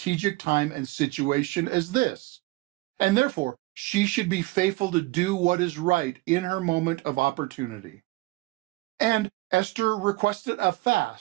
time and situation as this, and therefore she should be faithful to do what is right in her moment of opportunity. And Esther requested a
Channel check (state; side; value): quieter; left; 20.8 dB